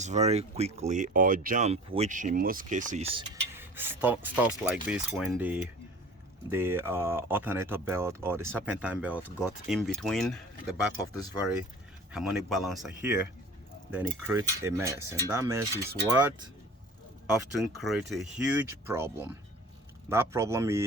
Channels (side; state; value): both; normal; correlation 0.43